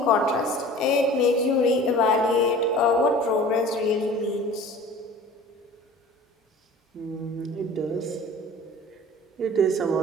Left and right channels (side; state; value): both; normal; correlation 0.42